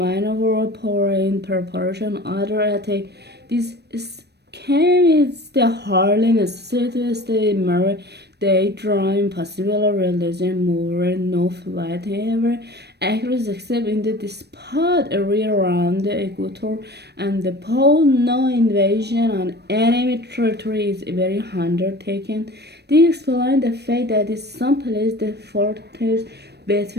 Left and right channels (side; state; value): left; late; 0.48 ms